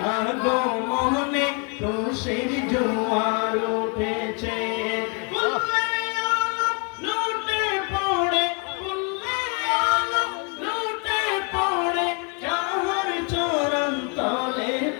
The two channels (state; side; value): quieter; right; 34.4 dB